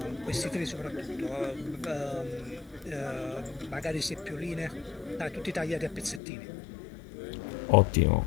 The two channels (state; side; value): drops out; right; at 6.2 s